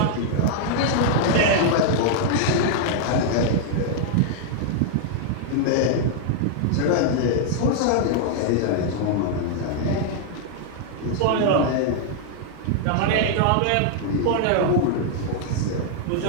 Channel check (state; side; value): different; both; correlation 0.00